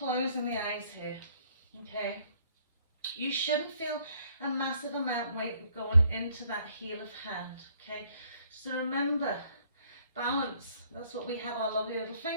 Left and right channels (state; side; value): inverted; both; correlation -0.64